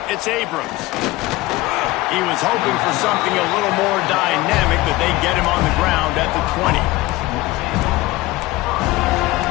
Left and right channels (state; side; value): quieter; right; 19.0 dB